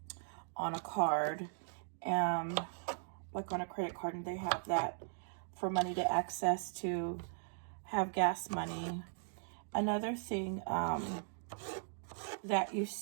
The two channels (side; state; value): left; silent; digital silence